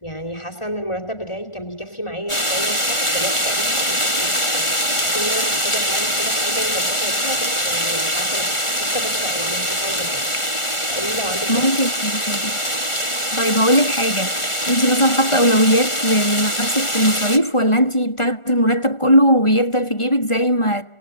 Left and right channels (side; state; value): right; late; 1.4 ms